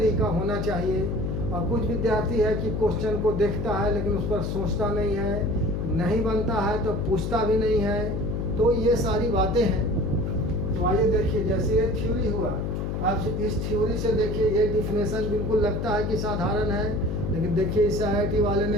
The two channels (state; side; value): noise; left; hum, 2 dB below the sound